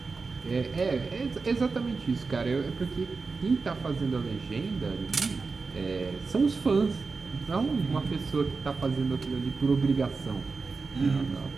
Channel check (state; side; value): quieter; left; 4.3 dB